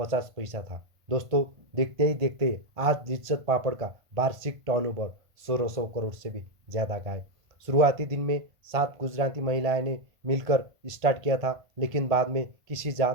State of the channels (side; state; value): left; late; 1.5 ms